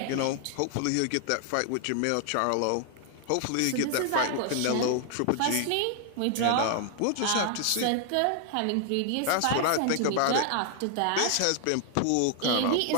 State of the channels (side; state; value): both; different; correlation 0.00